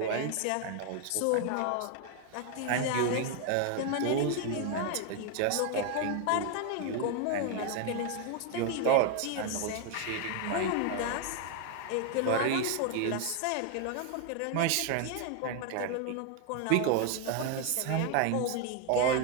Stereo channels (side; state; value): both; different; correlation 0.01